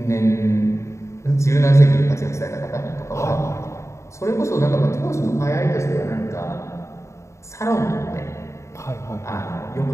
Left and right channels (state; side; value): late; right; 0.14 ms